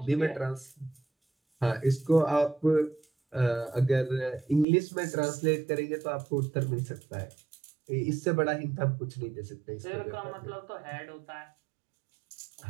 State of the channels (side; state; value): left; drops out; at 4.7 s